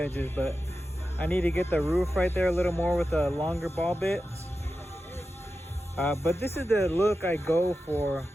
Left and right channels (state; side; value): normal; both; correlation 0.92